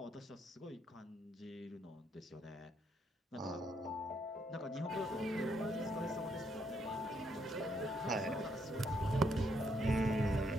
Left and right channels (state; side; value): normal; both; correlation 0.74